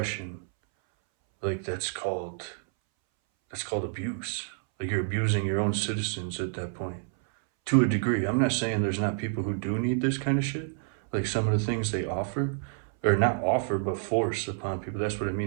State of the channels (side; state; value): left; silent; 59 dB below the other